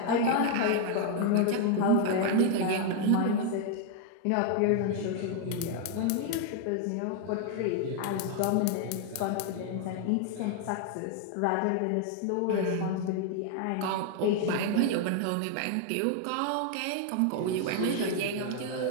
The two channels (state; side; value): different; both; correlation 0.00